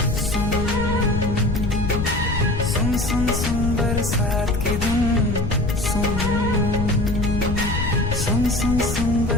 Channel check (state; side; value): noise; left; rumble, 2 dB below the sound